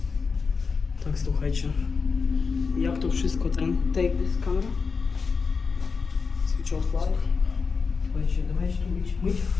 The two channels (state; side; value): quieter; right; 5.0 dB